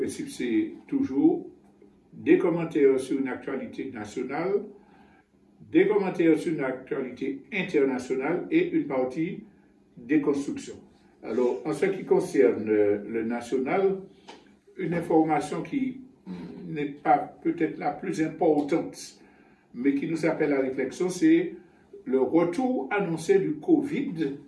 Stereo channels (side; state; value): both; identical; correlation 1.00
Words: c'est toujours des commentaires sur une actualité nationale, des commentaires sur une actualité internationale et une partie déconstruction. Alors, en ce qui concerne le national, une information qui n'est pas peut-être la plus importante, mais qui nous appelle à la réflexion, c'est le retour annoncé du Covid